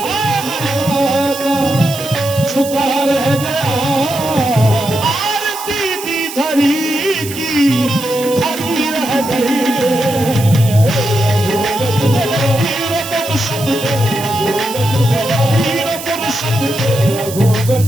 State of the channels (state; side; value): noise; right; hiss, 11 dB below the sound